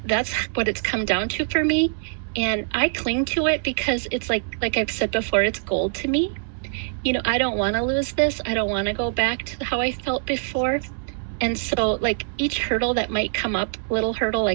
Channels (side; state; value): left; silent; digital silence